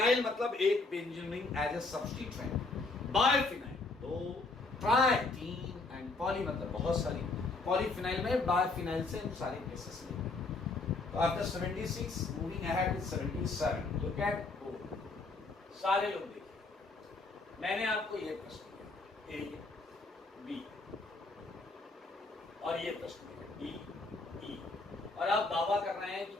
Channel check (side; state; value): right; quieter; 3.6 dB